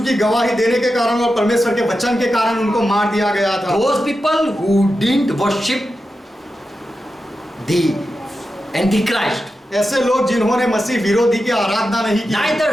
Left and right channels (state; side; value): normal; both; correlation 0.90